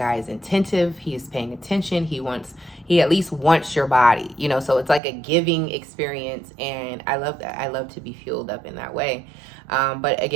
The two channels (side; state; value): left; drops out; at 5.0 s